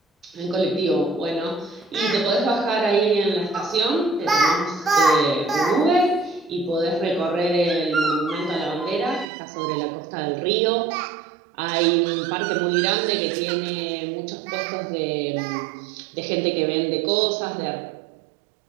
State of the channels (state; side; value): drops out; left; at 9.2 s